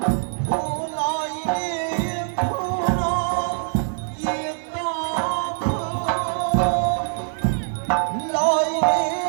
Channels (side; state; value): left; silent; 63 dB below the other